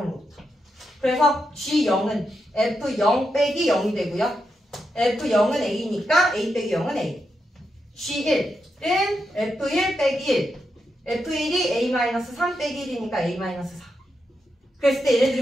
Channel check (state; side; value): normal; both; correlation 0.85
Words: 그래서 g0은 f0 빼기 0이 되고요. f0은 a니까 a 빼기 0은 a. g1은 f1 빼기 1. f1이 a-3 빼기 1이니까 a-4. 그랬을 때